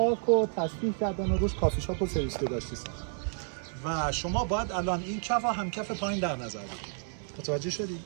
رو تصفیح کردن و روش کافی شاپ و سرویس داشتی ساختن. و شما باید الان این کف و هم کف پایین در نظر بگیرید. متوجه شدید؟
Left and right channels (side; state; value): left; silent; 57 dB below the other